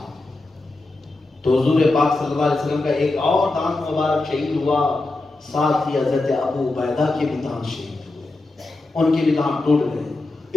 تو حضور پاک صلی اللہ علیہ وسلم کا ایک اور دانت مبارک شہید ہوا، ساتھ ہی حضرت ابو عبیدہ کے بھی دانت شہید ہوئے، ان کے بھی دانت ٹوٹ گئے،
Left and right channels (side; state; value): right; quieter; 3.1 dB